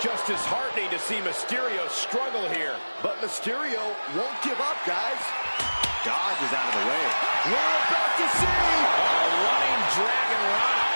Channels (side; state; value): both; inverted; correlation -1.00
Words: disheartening to see Mysterio struggle here. But Mysterio won't give up, guys. Dodges out of the way. We're about to see. Running Dragon Rana.